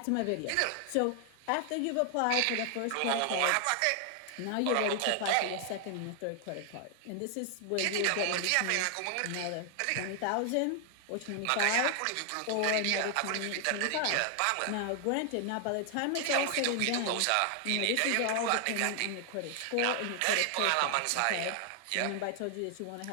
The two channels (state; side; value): different; both; correlation 0.00